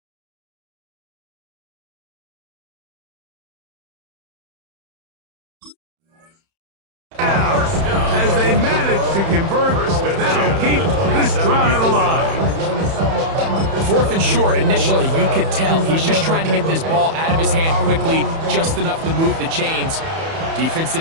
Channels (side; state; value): left; late; 31 ms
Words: As they manage to convert, that'll keep this drive alive. 4th and short, initially, you could tell he's just trying to get this ball out of his hand quickly, just enough to move the chains. Defense